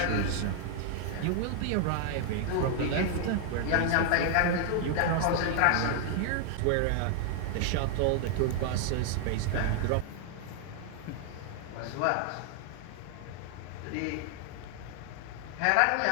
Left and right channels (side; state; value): both; different; correlation 0.00